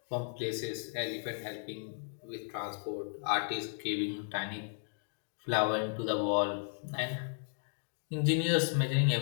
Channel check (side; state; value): right; silent; 55 dB below the other